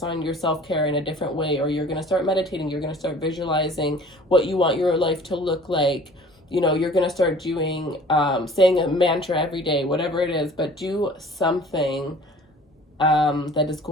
on your self-care in a different way, or you're going to start meditating, you're going to start visualizing what you want your life to look like. You know, you're going to start doing, saying a mantra every day, whatever it is, but do something that is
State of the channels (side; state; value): both; normal; correlation 0.48